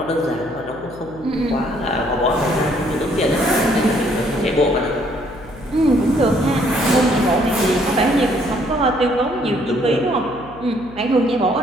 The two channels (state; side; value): noise; left; hum, 19 dB below the sound